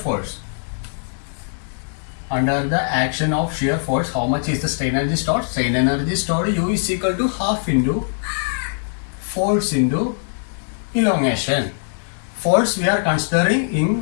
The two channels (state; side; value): silent; right; digital silence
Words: how much is the strain energy stored? Strain energy stored U is equal to half into force into elongation. Force we are considering